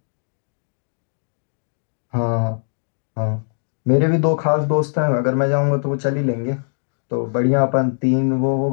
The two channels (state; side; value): silent; right; digital silence